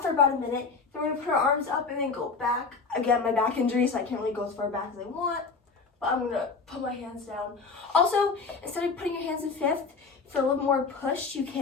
for about a minute. Then we're gonna put our arms up and then go back. Again, my back injury, so I can't really go as far back as I want, but I'm gonna put my hands down. Also, instead of putting your hands in fifth, for a little more push, you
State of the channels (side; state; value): right; quieter; 4.5 dB